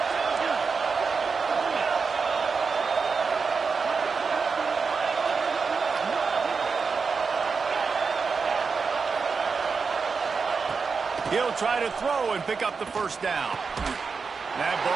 He'll try to throw and pick up the first down. That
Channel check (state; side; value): quieter; left; 5.1 dB